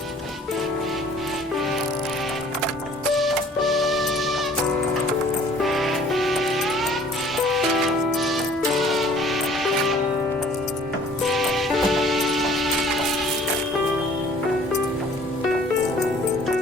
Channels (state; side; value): normal; both; correlation 0.53